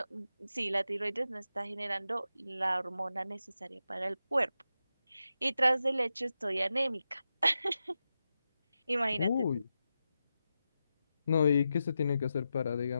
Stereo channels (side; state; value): both; inverted; correlation -0.89